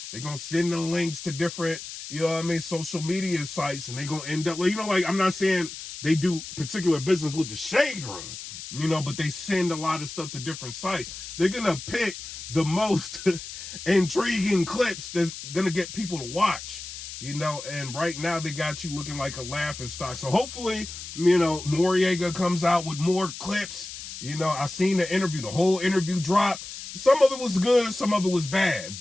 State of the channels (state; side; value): noise; left; hiss, 10 dB below the sound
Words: They going to send the links to different, social media sites, and they going to end up, I'm not saying they do particular business with the Shade Room, but they send a lot of stuff to different sites. They're going to pick the most intriguing clips that's gonna get people to watch, and right now they got you looking like a laughing stock. So hopefully, Noriega comes out with more clips. I seen the interview, the whole interview dropped. Some of it was good, some of it was bad.